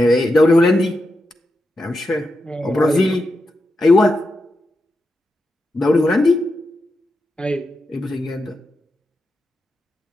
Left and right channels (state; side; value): normal; both; correlation 0.87